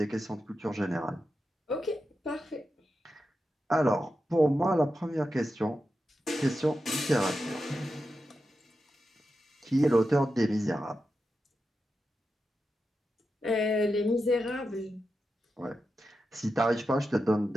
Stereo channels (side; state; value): both; normal; correlation 0.89